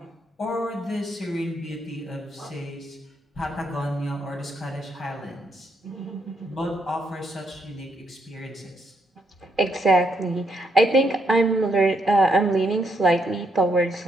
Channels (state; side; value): normal; both; correlation 0.76